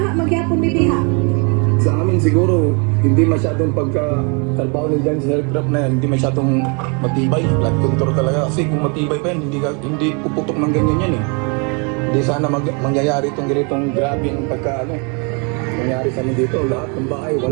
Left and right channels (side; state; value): left; quieter; 34.4 dB